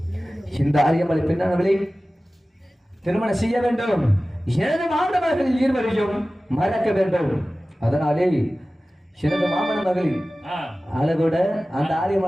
இந்த ஆரியமலை பெண்ணானவளை திருமணம் செய்ய வேண்டும். எனது மாமன மகளில் இருவரையும் மறக்க வேண்டும். அதனாலே எனது மாமன மகளில் அழகோட அந்த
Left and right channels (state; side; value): normal; both; correlation 0.96